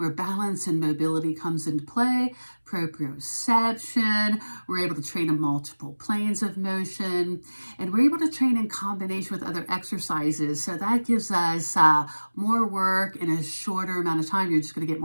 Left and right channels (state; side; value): inverted; both; correlation -1.00